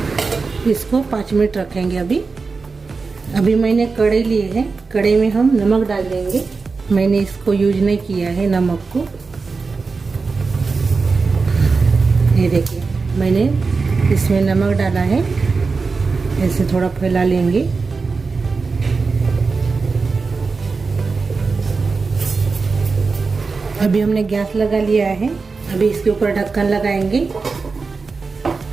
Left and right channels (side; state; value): left; quieter; 4.4 dB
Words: इसको 5 मिनट रखेंगे। अभी मैंने कढ़ाई ली है। कढ़ाई में हम नमक डाल देंगे। मैंने इसको यूज नहीं किया है नमक को। ये देखिए मैंने इसमें नमक डाला है। ऐसे थोड़ा फैला लेंगे। अभी हमने गैस लगा लिया है। अभी इसके ऊपर ढक्कन लगाएंगे,